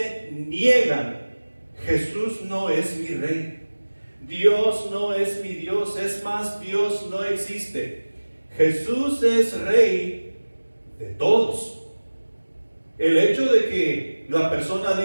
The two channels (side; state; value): both; inverted; correlation -1.00